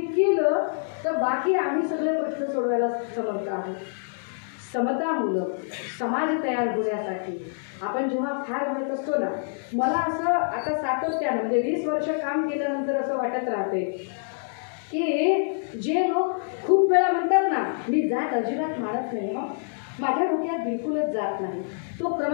केलं तर बाकी आम्ही सगळे प्रश्न सोडवायला समर्थ आहोत. समतामूलक समाज तयार होण्यासाठी आपण जेव्हा फार म्हणत असतो ना, मला असं आता सातत्यानं म्हणजे 20 वर्ष काम केल्यानंतर असं वाटत राहते की जे लोक खूप वेळा म्हणतात ना, मी जात अजिबात मानत नाही, मग माझ्या डोक्यात बिलकुलच जात नाही, तो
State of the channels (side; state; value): right; silent; digital silence